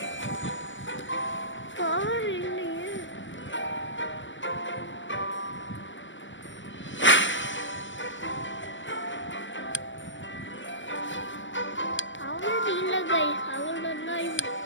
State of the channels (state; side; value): late; right; 0.55 ms